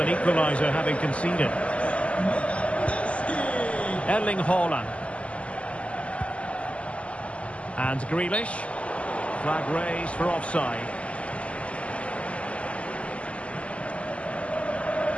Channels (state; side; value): late; right; 0.061 ms